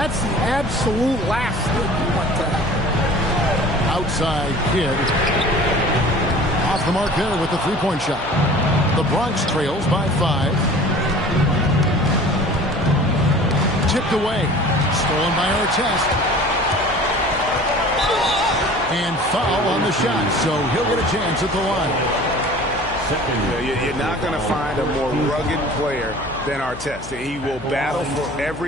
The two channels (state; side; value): noise; left; hum, 15 dB below the sound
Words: the absolute last thing you want to happen. Outside Kidd. Off the mark there with the three-point shot. The Bronx trails by 5. Tipped away. Stolen by Artest. And foul on the shot, so he'll get a chance at the line. You're not going to find a more rugged player than Artest. He will battle for